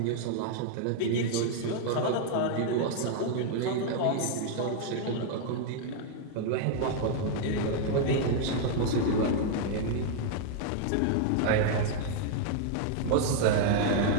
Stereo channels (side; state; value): both; different; correlation -0.01